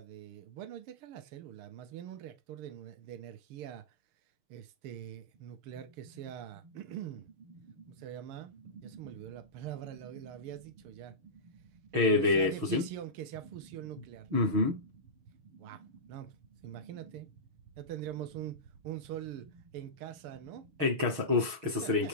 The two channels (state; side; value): late; left; 6.2 ms